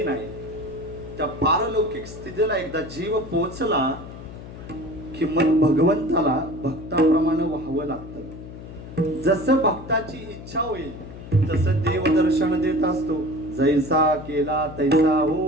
नाही, त्या पारलौकिक स्थितीला एकदा जीव पोहोचला की मग भगवंताला भक्ताप्रमाणे व्हावं लागतं. जसं भक्ताची इच्छा होईल तसं देव दर्शन देत असतो. जैसा केला तैसा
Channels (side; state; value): left; noise; hum, 13 dB below the sound